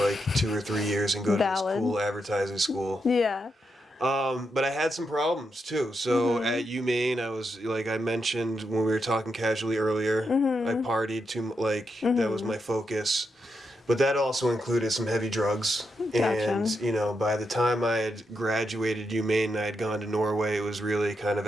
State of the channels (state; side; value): normal; both; correlation 0.84